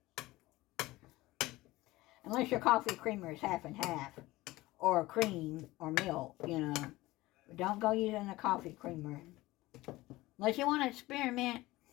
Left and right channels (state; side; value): quieter; right; 18.8 dB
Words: Unless your coffee creamer is half and half. Or cream or milk, you know. But don't go using a coffee creamer. Unless you want to experiment.